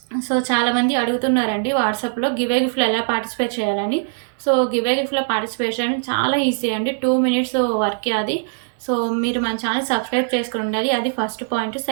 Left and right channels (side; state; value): left; silent; digital silence